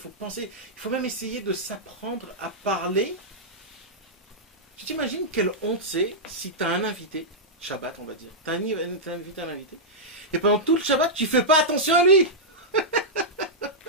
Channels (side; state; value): both; normal; correlation -0.09